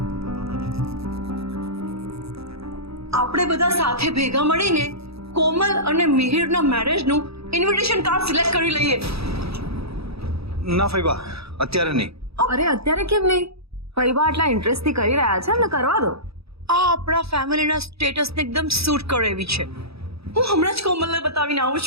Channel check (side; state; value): left; late; 0.77 ms